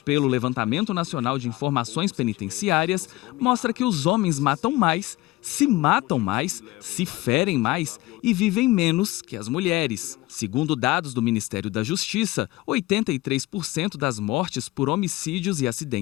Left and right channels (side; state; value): right; quieter; 19.5 dB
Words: pelo Levantamento Nacional de Informações Penitenciárias mostra que os homens matam mais, se ferem mais e vivem menos que as mulheres. Segundo dados do Ministério da Justiça, 83% das mortes por homicídios e